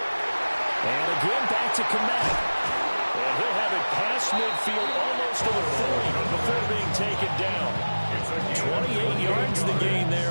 And again, back to Kmet. And he'll have it past midfield almost to the 40 before being taken down. 28 yards the gain there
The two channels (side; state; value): both; inverted; correlation -1.00